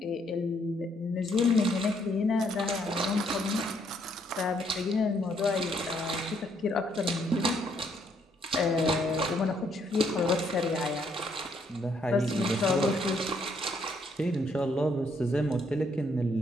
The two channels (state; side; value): normal; both; correlation 0.71